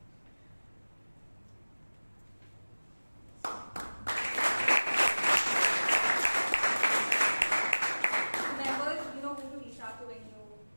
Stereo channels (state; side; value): inverted; both; correlation -1.00